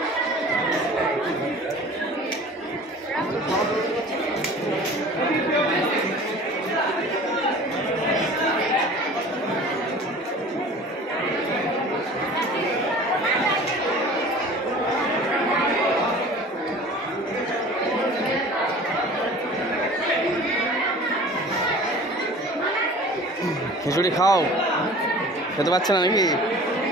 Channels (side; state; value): both; normal; correlation 0.43